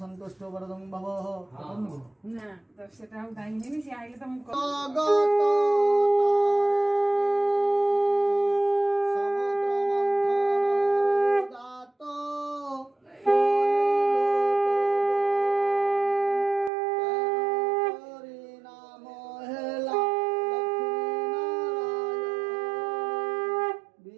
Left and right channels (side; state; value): left; drops out; at 16.7 s